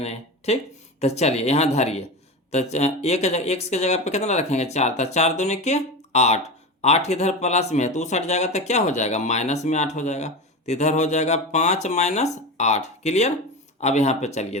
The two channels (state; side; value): normal; both; correlation 0.24